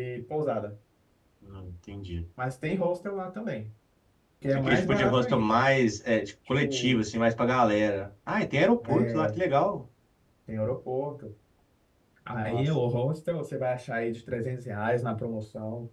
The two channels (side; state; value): both; identical; correlation 1.00